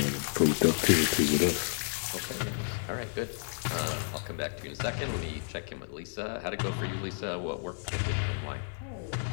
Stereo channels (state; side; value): silent; right; digital silence